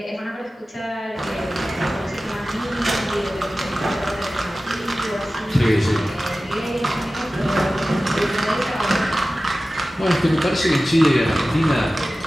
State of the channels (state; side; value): normal; both; correlation 0.96